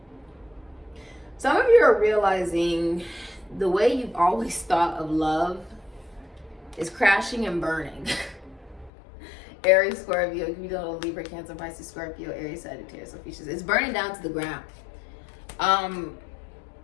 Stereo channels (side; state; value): right; drops out; at 8.9 s